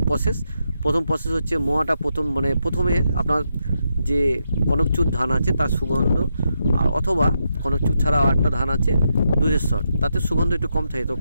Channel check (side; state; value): both; inverted; correlation -0.82